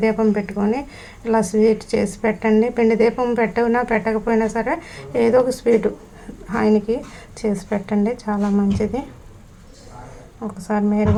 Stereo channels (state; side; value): identical; both; correlation 1.00